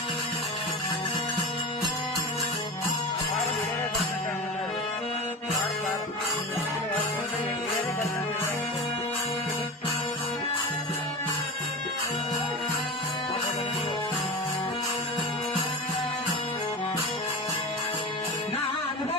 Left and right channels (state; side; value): normal; both; correlation 0.28